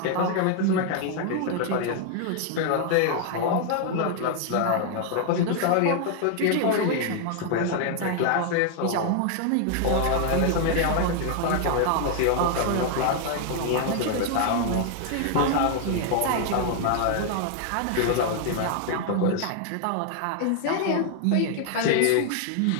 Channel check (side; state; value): both; different; correlation 0.00